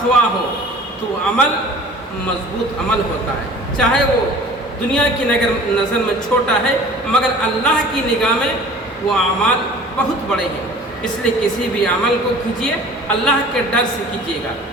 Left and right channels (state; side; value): normal; both; correlation 0.45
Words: ہو، تو عمل مضبوط عمل ہوتا ہے۔ چاہے وہ دنیا کی نظر میں چھوٹا ہے مگر اللہ کی نگاہ میں وہ اعمال بہت بڑے ہیں، اس لیے کسی بھی عمل کو کیجیے اللہ کے ڈر سے کیجیے گا۔